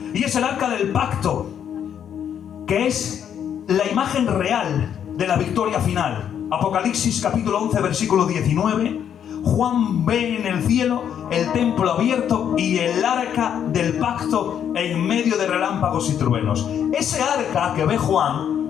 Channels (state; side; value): quieter; right; 8.9 dB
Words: Y es el arca del pacto, que es la imagen real de la victoria final. Apocalipsis capítulo 11 versículo 19. Juan ve en el cielo el templo abierto y el arca del pacto en medio de relámpagos y truenos. Ese arca que ve Juan